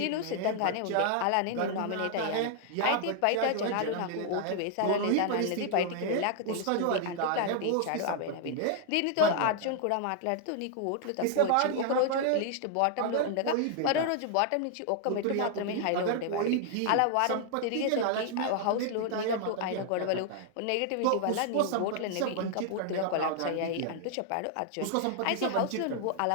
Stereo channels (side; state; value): both; different; correlation 0.00